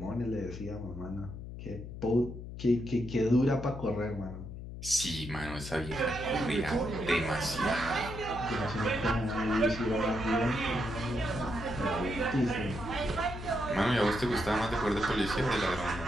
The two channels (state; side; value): noise; left; hum, 10 dB below the sound